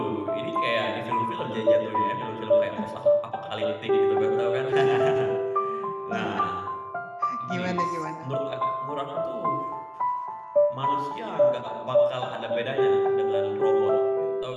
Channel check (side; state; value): both; identical; correlation 1.00